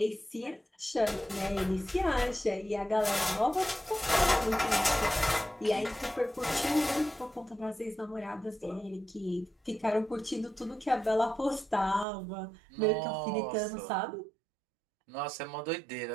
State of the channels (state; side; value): drops out; left; at 12.1 s